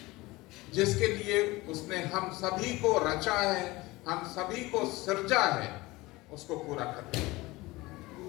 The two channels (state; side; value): quieter; right; 20.9 dB